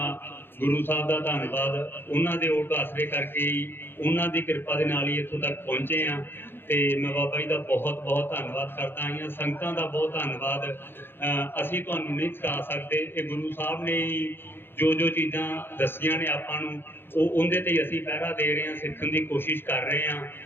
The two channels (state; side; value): late; right; 0.10 ms